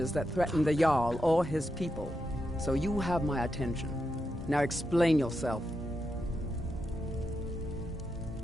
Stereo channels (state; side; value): normal; both; correlation 0.85